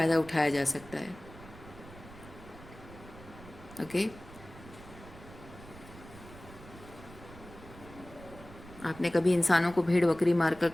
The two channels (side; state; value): right; noise; rumble, 18 dB below the sound